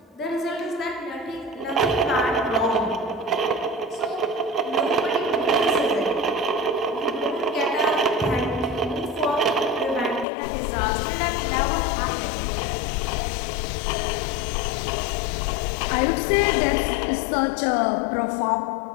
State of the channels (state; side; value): drops out; right; at 10.2 s